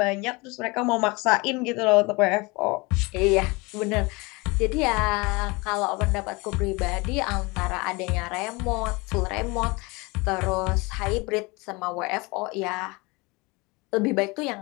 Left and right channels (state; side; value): quieter; right; 25.7 dB